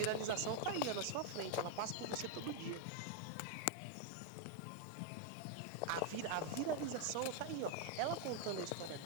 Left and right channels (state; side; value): different; both; correlation 0.00